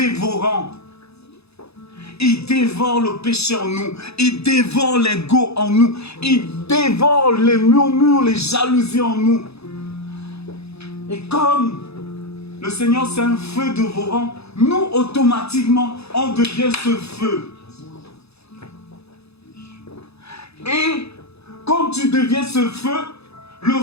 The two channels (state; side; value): late; right; 0.79 ms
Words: Il dévore le péché en nous. Il dévore l'ego en nous. Il dévore les murmures, les jalousies en nous. Et comme le Seigneur c'est un feu dévorant, nous automatiquement on devient ce feu. Et comme tu deviens ce feu, le